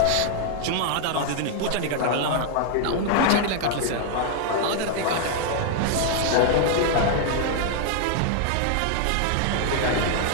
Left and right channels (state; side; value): different; both; correlation 0.00